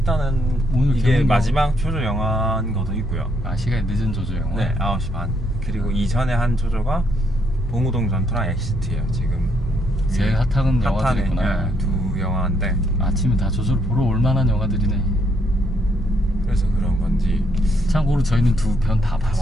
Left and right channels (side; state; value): both; normal; correlation 0.73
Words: 오늘 이게 개봉 마지막 조조 영화인 것도 있고요. 아, 시간이 늦은 조조 영화. 네, 9시 반. 그리고 이전에 한 조조가 봉우동 전투랑 엑시트예요. 지금 제일 핫한 영화들이구나. 네, 두 영화인데 아침에 다 조조를 보러 올 만한 영화들이네. 그래서 그런 건지. 참고로 저희는 두 편 다